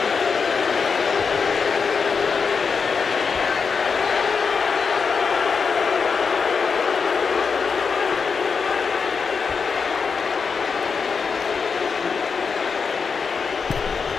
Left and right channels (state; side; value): quieter; right; 5.5 dB